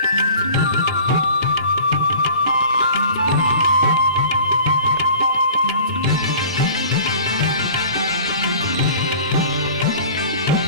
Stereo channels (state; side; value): inverted; both; correlation -0.44